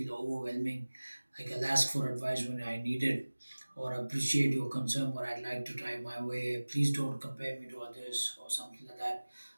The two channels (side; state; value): both; inverted; correlation -1.00